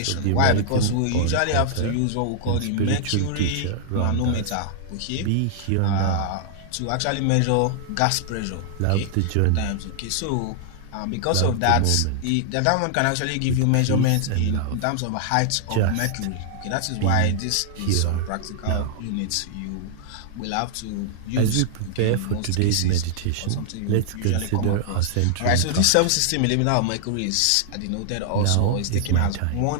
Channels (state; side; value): different; both; correlation -0.01